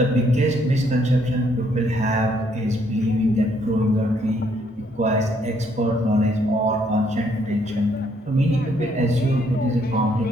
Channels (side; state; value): both; normal; correlation 0.69